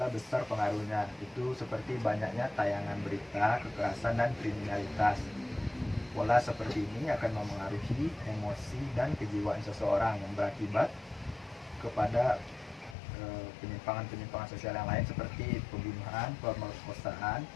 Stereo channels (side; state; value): right; drops out; at 13.0 s